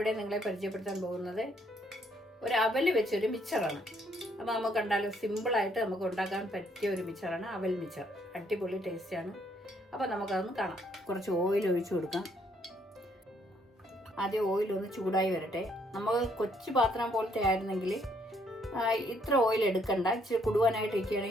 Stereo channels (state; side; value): normal; both; correlation 0.69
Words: നിങ്ങളെ പരിചയപ്പെടുത്താൻ പോകുന്നത് ഒരു അവൽ വെച്ചൊരു മിച്ചറാണ്. അപ്പോൾ നമുക്ക് കണ്ടാലും സിമ്പിളായിട്ട് നമുക്ക് ഉണ്ടാക്കാൻ പറ്റിയ ഒരു മിച്ചറാണ് അവൽ മിച്ചർ. അടിപൊളി ടേസ്റ്റാണ്. അപ്പോൾ നമുക്കതൊന്ന് കാണാം. കുറച്ച് ഓയിൽ ഒഴിച്ചു കൊടുക്കാം. ആദ്യം ഓയിലൊന്ന് ചൂടായി വരട്ടെ. നമ്മൾ കൊച്ചു പാത്രം പോലത്തെ ആയിരുന്നെങ്കിൽ ഇത്ര ഓയിൽ എടുക്കണ്ട. ഇച്ചിരി കുടുവാനായിട്ട്